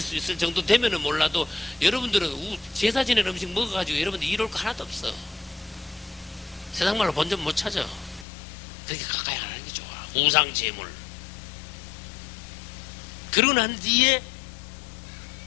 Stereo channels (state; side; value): drops out; right; at 8.2 s